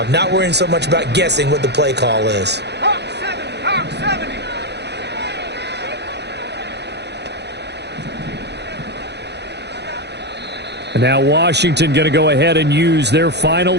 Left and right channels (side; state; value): left; late; 0.49 ms